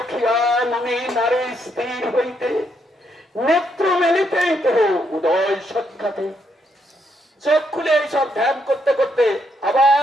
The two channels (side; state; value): both; normal; correlation 0.76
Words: মনে নারী স্থির হইতে, নেত্র মেলিতেই তো উদয় সাক্ষাতে। চোখ খুলে এইসব ধ্যান করতে করতে